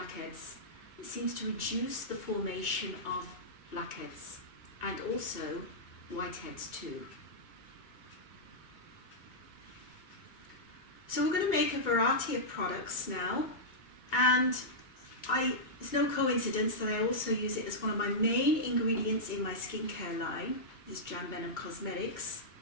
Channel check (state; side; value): late; right; 2.2 ms